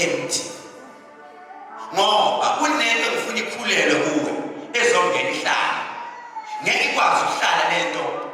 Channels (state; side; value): identical; both; correlation 1.00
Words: ngoba kunento ngifuna ikhulelwe kuwe ezongena ihlala. Ngeke ikwazi ukuhlala lento